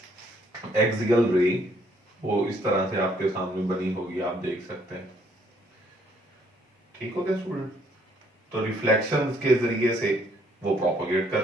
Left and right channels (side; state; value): both; normal; correlation 0.67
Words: एक्सियल रे, वो इस तरह से आपके सामने बनी होगी, आप देख सकते हैं। ठीक हो गया स्टूडेंट? तो रिफ्लेक्शन के जरिए से वो प्रोपोगेट